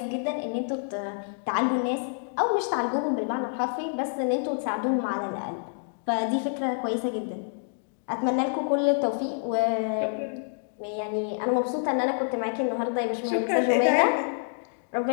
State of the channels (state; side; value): silent; right; digital silence